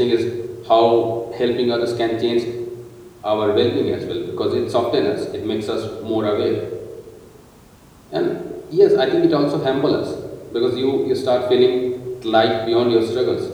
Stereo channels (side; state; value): both; identical; correlation 1.00